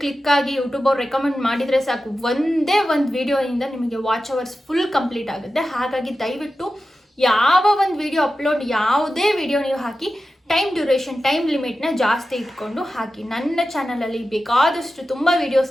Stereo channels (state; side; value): normal; both; correlation 0.93